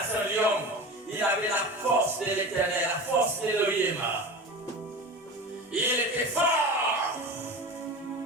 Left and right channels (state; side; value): normal; both; correlation 0.31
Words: un lion. Il avait la force de l'Éternel, la force d'Élohim. Il était fort.